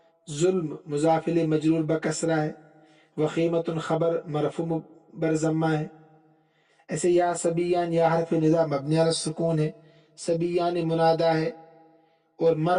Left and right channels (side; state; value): both; identical; correlation 1.00